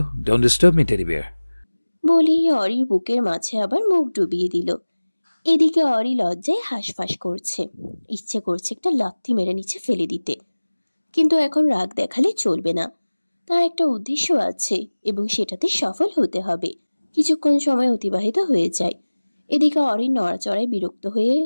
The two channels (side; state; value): both; inverted; correlation -1.00